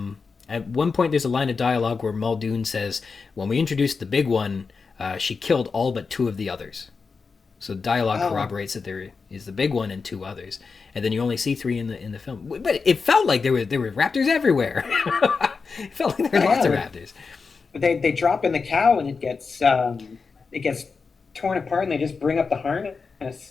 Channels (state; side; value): quieter; right; 4.9 dB